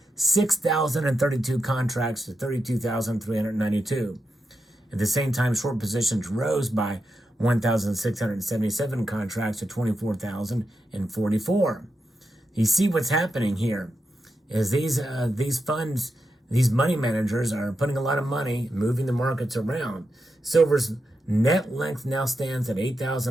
6,032 contracts to 32,392. At the same time, short positions rose by 1,677 contracts to 24,044. You see what's happening here is these funds, these money managers are putting a lot of money, moving the markets around. Silver's net length now stands at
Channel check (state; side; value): normal; both; correlation 0.87